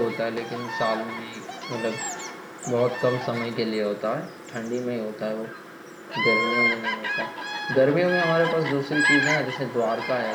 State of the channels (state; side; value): identical; both; correlation 1.00